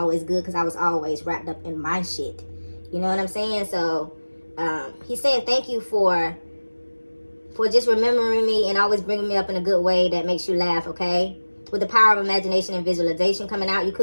good because I was always wrapped up in my shit. You know what I'm saying? So he's saying thank you for just remembering me and always bringing me up in a good way that makes you laugh, okay? With the power of imagination and visualization coming out, you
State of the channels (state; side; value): inverted; both; correlation -1.00